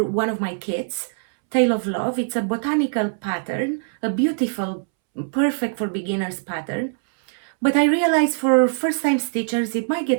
one of my kits, Tale of Love. It's a botanical pattern, a beautiful, perfect for beginners pattern. But I realize for first-time stitchers, it might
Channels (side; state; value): left; silent; 64 dB below the other